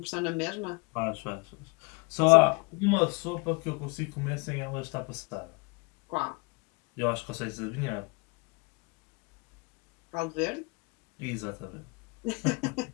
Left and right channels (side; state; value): right; quieter; 30.5 dB